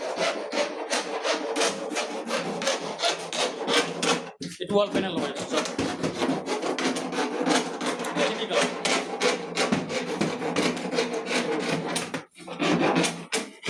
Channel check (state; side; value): identical; both; correlation 1.00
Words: এটা ওয়াল প্যানেল বানাইছো চাও ঠিক আছে